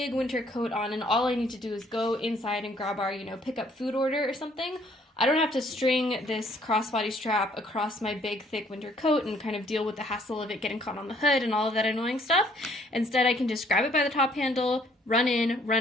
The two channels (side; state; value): both; normal; correlation 0.63